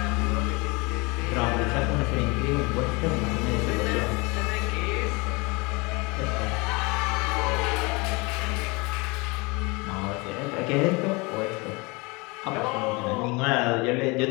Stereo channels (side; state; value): right; quieter; 26.7 dB